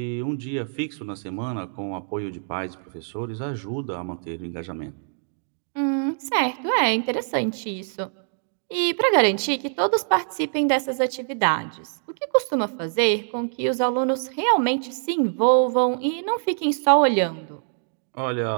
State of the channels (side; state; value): left; silent; digital silence